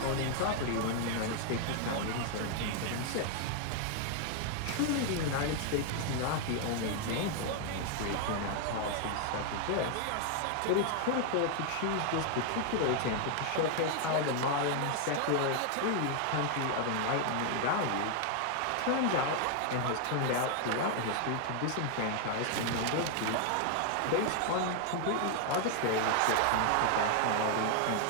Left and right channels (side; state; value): both; different; correlation 0.00